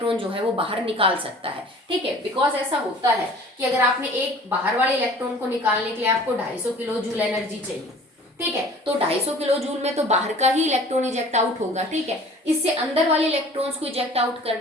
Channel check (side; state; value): both; normal; correlation 0.47